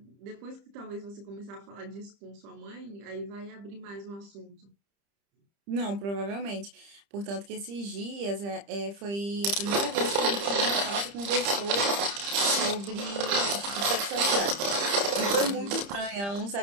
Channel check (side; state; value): left; late; 30 ms